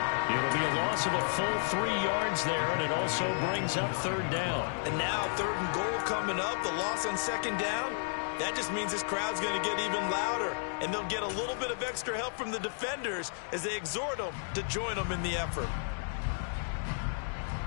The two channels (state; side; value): silent; right; digital silence